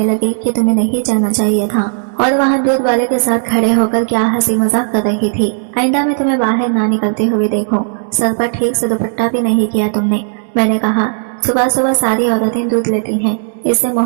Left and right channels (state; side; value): silent; left; digital silence